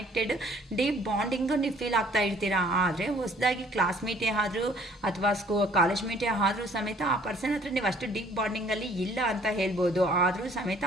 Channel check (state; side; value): normal; both; correlation 0.58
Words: ಡೀಪ್ ಬಾಂಡಿಂಗು ನೀವು ಫೀಲ್ ಆಗ್ತಾ ಇರ್ತೀರಾ. ಆದರೆ ಹೊಸದಾಗಿ ಕ್ಲಾಸ್ಮೇಟೇ ಆದರೂ ಅಥವಾ ಕಾಲೇಜ್ ಮೇಟೇ ಆದರೂ ಸಮೇತ ಆ ಪರ್ಸನ್ ಹತ್ರ ನೀವು ಅಷ್ಟು ಡೀಪ್ ಬಾಂಡಿಂಗಲ್ಲಿ ಇಲ್ಲ ಅಂತ ಹೇಳ್ಬೋದು. ಆದರೂ ಸಮೇತ